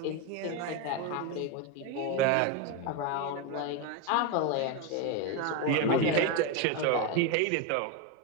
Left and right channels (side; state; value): both; different; correlation 0.03